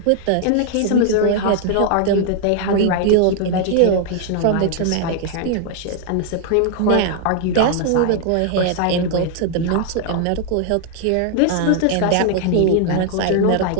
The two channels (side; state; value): both; different; correlation 0.00